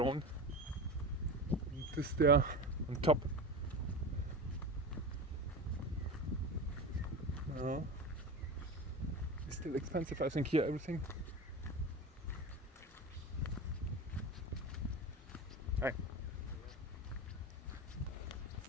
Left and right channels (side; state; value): both; normal; correlation 0.27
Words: And this there on top. It's still expensive, I think, here, everything. Hi.